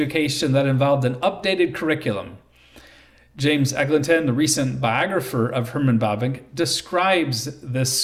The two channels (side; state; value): both; identical; correlation 1.00